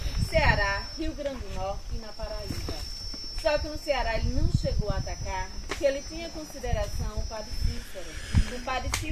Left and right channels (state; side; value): identical; both; correlation 1.00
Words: Ceará, Rio Grande do Norte e na Paraíba. Só que no Ceará ele não chegou a atacar, porque ele tinha consideração o padre Cícero. O padre